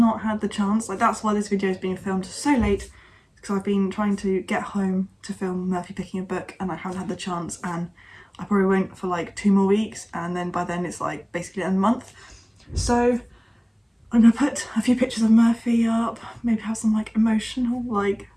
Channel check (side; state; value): both; identical; correlation 1.00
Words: had the chance, like that's why this video is being filmed so late, because I've been trying to get home to film Murphy picking a book and I haven't had the chance, and I probably won't for like 2 more weeks, and then by then it's like basically a month. So I'm gonna put a few pictures of Murphy up, maybe have some like emotional like